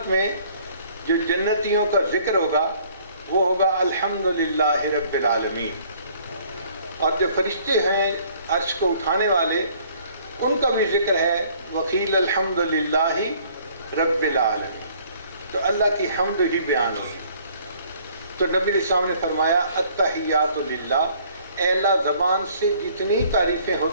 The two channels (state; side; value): inverted; both; correlation -0.58